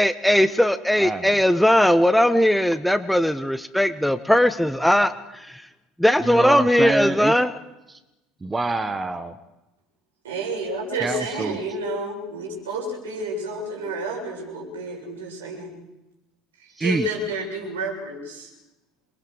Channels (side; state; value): both; normal; correlation 0.90